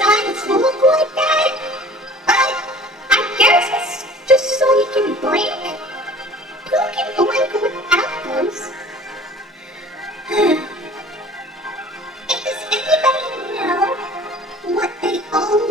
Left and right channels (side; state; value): both; normal; correlation 0.47